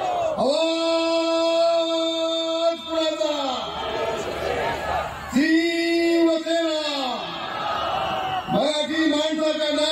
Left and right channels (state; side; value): identical; both; correlation 1.00